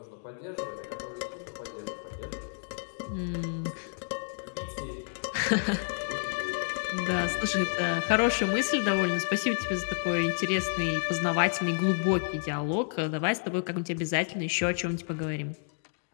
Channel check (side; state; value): right; silent; digital silence